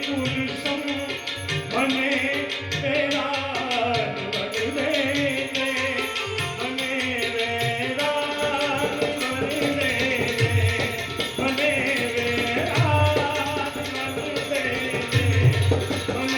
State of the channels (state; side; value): identical; both; correlation 1.00